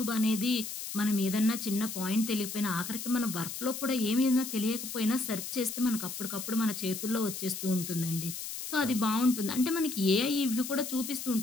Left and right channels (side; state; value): left; noise; hiss, 7 dB below the sound